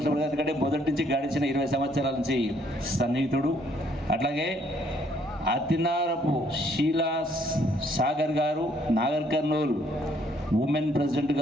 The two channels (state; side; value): normal; both; correlation 0.67